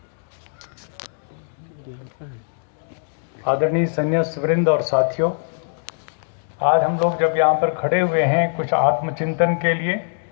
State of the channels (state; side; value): silent; right; digital silence